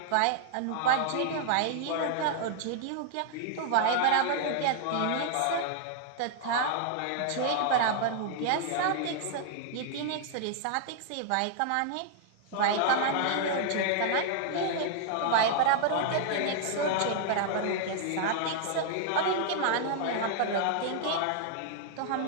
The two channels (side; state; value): both; different; correlation 0.00